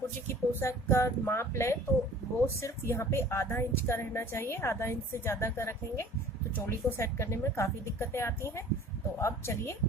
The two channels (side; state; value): both; normal; correlation 0.47